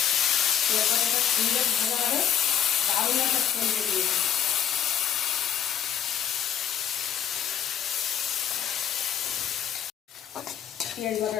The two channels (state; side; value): quieter; right; 9.2 dB